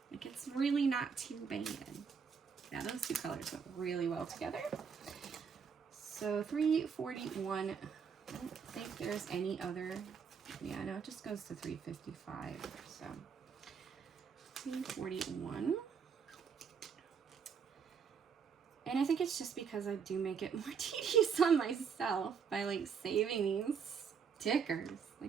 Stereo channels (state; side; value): quieter; left; 6.5 dB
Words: Like, it's really not too bad. Yeah, those two colors went really well together. So 341, I don't think there's any other, yeah, no, it just goes to 355, so 341. And I think it's just because I do make it more tedious on myself by like saving these stickers.